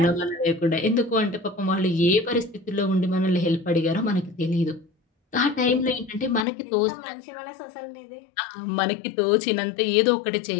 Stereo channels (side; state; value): right; drops out; at 6.5 s